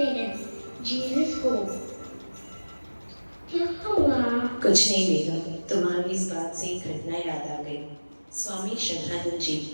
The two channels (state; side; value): inverted; both; correlation -1.00